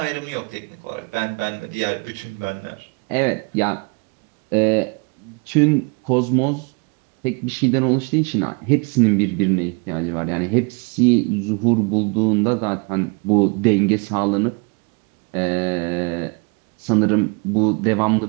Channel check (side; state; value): left; quieter; 32.3 dB